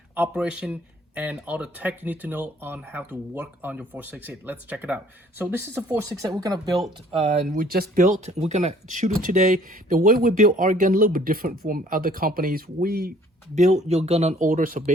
operation and all the tech you need to know on how to work on your 468. Let's check it out. So this is a 468 we're gonna build, and we just built. We're gonna shoot it today. The way we build our gun a little bit different from other companies. We build your gun on order. So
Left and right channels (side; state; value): both; normal; correlation 0.57